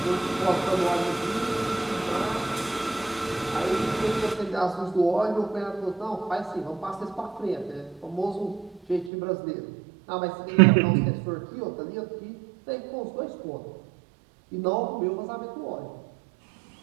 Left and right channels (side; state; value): left; drops out; at 9.1 s